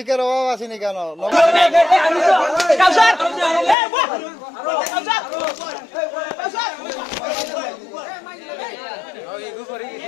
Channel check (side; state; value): right; drops out; at 3.8 s